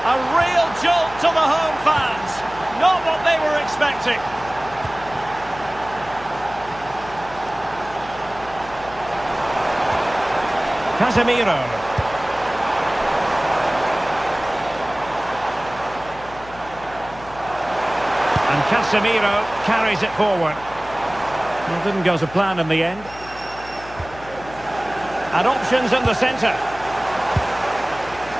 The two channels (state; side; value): noise; left; hum, 18 dB below the sound